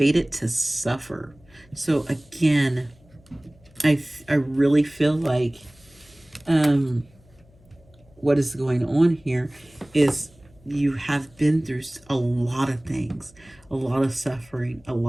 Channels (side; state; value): left; noise; hum, 29 dB below the sound